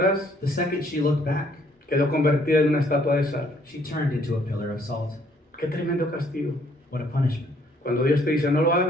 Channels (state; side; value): normal; both; correlation 0.64